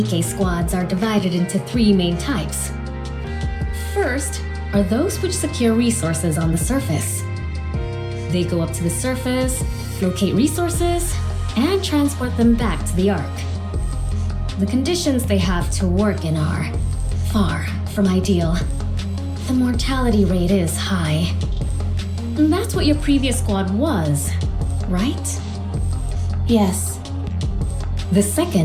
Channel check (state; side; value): identical; both; correlation 1.00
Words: squads are divided into 3 main types. First are those which secure resources on the surface. They go up to the surface, locate resources, and transport them back to the Ark. The conditions they have to work in are far from ideal. The mortality rate is high. And that's what your previous squad was, right? Yes. The